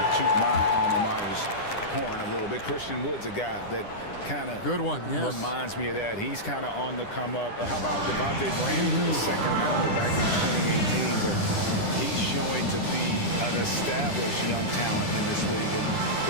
to toot my alma mater's horn a little bit. Christian Wood's a guy that kind of reminds me of that. He's kind of on the come up. How about Devontae Graham, the second rounder back in 2018? But he's showing to be an established young talent in this league. And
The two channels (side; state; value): right; late; 10 ms